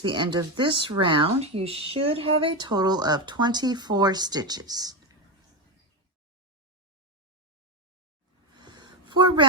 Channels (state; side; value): normal; both; correlation 0.13